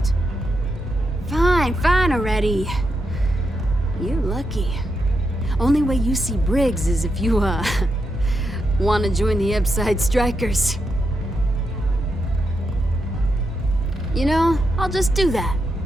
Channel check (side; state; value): both; normal; correlation 0.84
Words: Fine already. You're lucky. Only way you see Briggs is if you, want to join the Upside Strikers. You know, I'll just do that.